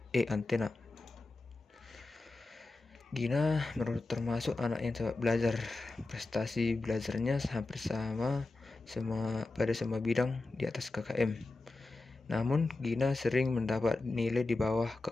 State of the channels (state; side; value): quieter; right; 3.2 dB